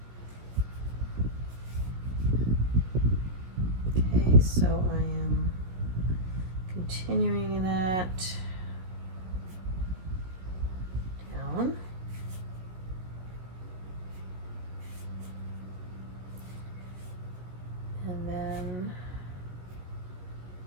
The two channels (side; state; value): left; late; 17 ms